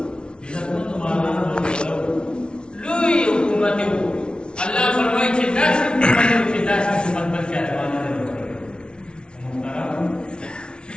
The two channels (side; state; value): right; late; 0.056 ms